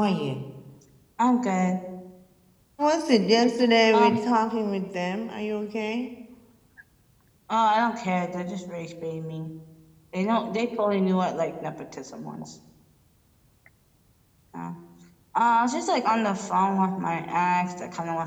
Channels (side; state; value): both; identical; correlation 1.00